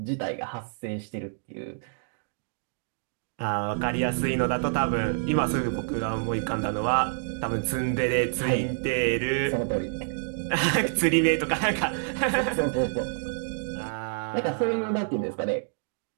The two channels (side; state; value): left; silent; digital silence